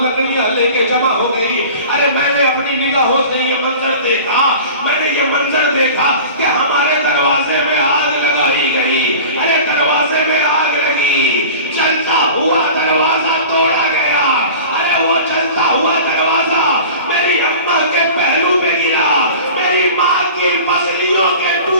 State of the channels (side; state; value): both; inverted; correlation -0.39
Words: لکڑیاں لے کے جمع ہو گئی. ارے میں نے اپنی نگاہوں سے یہ منظر دیکھا, میں نے یہ منظر دیکھا کہ ہمارے دروازے میں آگ لگائی گئی. ارے دروازے میں آگ لگی, جلتا ہوا دروازہ توڑا گیا. ارے وہ جلتا ہوا دروازہ میری اماں کے پہلو پہ گرا, میری ماں کی پسلیوں کے